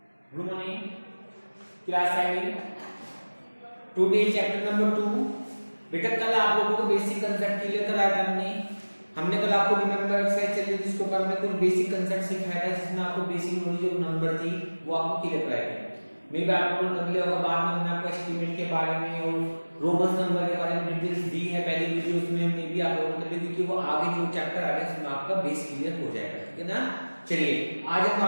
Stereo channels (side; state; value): both; inverted; correlation -1.00